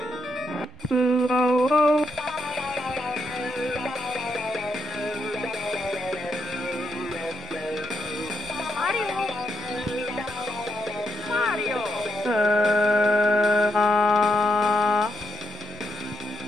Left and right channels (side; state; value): both; normal; correlation 0.81